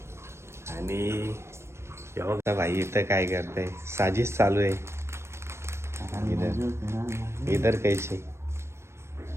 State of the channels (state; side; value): late; left; 0.13 ms